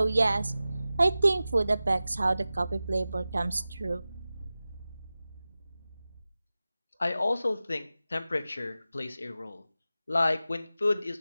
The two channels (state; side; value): inverted; both; correlation -0.95